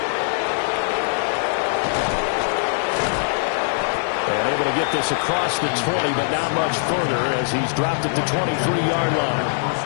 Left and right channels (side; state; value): right; silent; digital silence